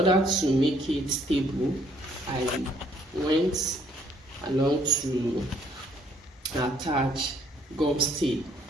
to make it stable, I went along to attach gum tape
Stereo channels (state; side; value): normal; both; correlation 0.65